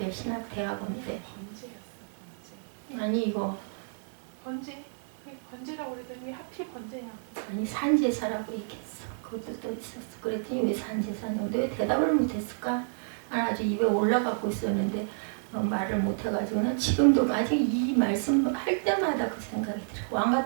신학대학원 때 아니 이거 번제라고 그러더니 하필 번제냐. 아니 산제사라고 얘기했어. 그것도 또 있었어. 그랬더니 왜 산제사냐고 왜 대답을 못했을까? 아주 입에 올라가고 있었는데 말을 못해가지고는 지금도 아직 이 말씀 할 때마다 그 생각이 들어요.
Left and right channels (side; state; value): left; silent; 58 dB below the other